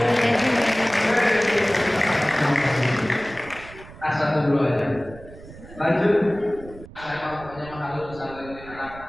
Satu dulu aja. Lanjut. Saya pokoknya menghalu pesantren ini anak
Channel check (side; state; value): right; noise; rumble, 18 dB below the sound